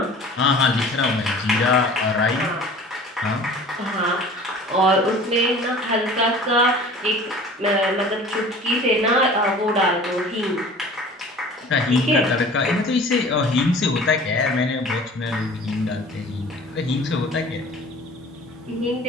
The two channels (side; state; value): both; normal; correlation 0.44